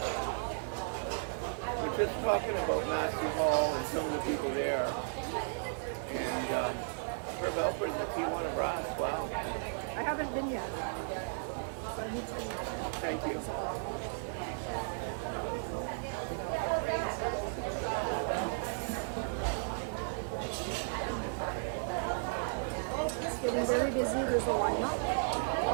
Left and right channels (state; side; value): silent; left; 55 dB below the other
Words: We're just talking about Massey Hall and some of the people there. And Herb Alfred and the Tijuana Brass, wow. I haven't been yet. So I need to. Thank you. It's getting very busy. There's a lineup.